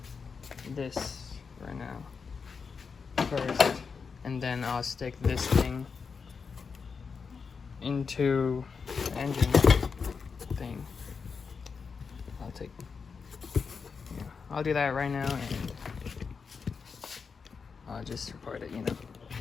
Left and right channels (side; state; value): right; quieter; 5.5 dB